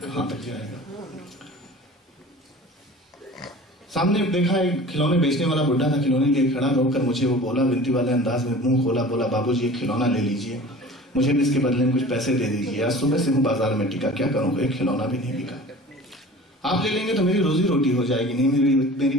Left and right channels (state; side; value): normal; both; correlation 0.41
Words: तक जाएगा। सामने देखा एक खिलौने बेचने वाला बुढ़ा था, खिलौने लिए खड़ा। रोककर मुझे वो बोला, विनती वाले अंदाज में मुंह खोला, बोला, बाबूजी एक खिलौना ले लीजिए, मुझे भी इसके बदले में कुछ पैसे दे दीजिए। आज सुबह से हूँ बाजार में टिका, क्या करूँ, एक खिलौना भी नहीं बिका। आप ले लेंगे तो मेरी रोजी रोटी हो जाएगी, नहीं मेरी